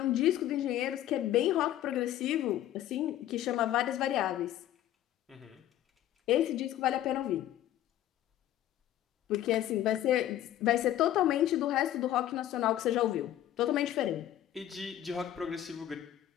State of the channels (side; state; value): right; quieter; 12.6 dB